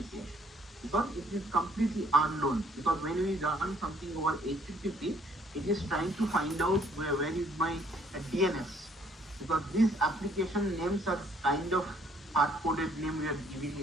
because it is completely unknown. Because when we run something over HTTP, it is trying to find out where is my DNS. Because these application names are kind of hard-coded name we are giving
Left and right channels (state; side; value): normal; both; correlation 0.63